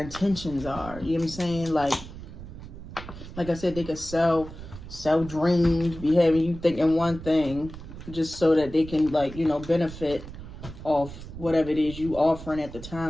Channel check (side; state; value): right; noise; rumble, 13 dB below the sound